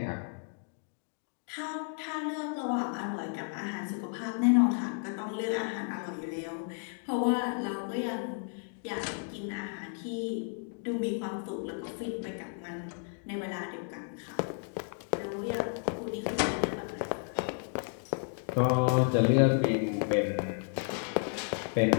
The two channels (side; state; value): right; silent; 56 dB below the other